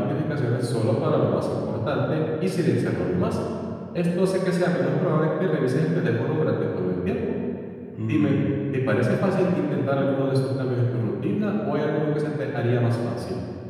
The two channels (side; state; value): both; identical; correlation 1.00